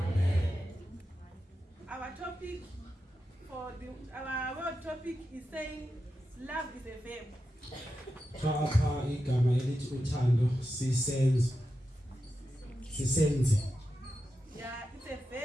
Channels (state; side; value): normal; both; correlation 0.89